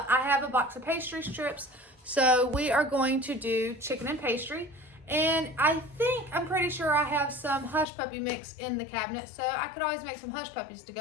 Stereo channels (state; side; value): drops out; right; at 7.9 s